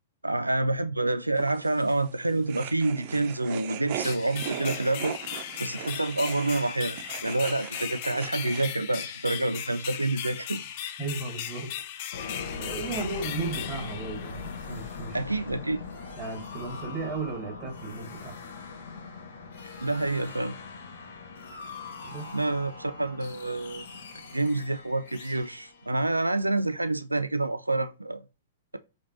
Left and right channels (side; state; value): both; inverted; correlation -0.81